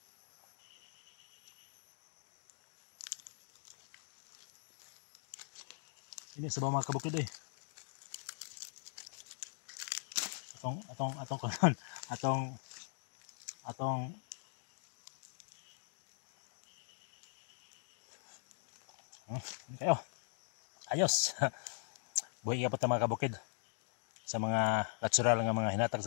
Ini sabaw mga kabukid eh. Atong kayo. Ayos. Buhay ka pa ta mga kabukid. Sa mga natural nga mga hinatag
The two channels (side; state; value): right; silent; digital silence